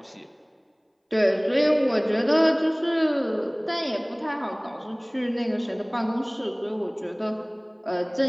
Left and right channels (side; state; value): both; identical; correlation 1.00